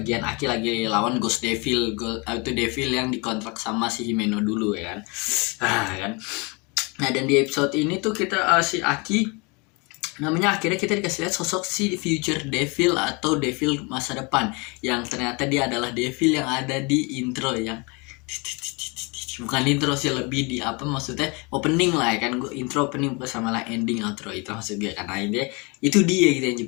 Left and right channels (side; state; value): right; quieter; 29.3 dB